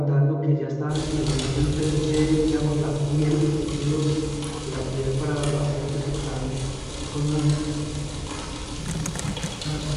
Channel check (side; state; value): both; identical; correlation 1.00